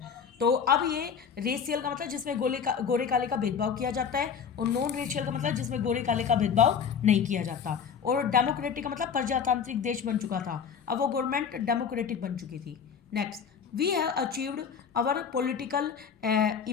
तो अब ये रेशियल का मतलब जिसमें गोरे काले का भेदभाव किया जाता है, और नॉन रेशियल का मतलब जिसमें गोरे काले का भेदभाव नहीं किया जाता। और डेमोक्रेटिक का मतलब प्रजातांत्रिक देश बन चुका था, अब वो गवर्नमेंट डेमोक्रेटिक बन चुकी थी। Next, we have achieved our political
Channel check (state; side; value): quieter; right; 7.0 dB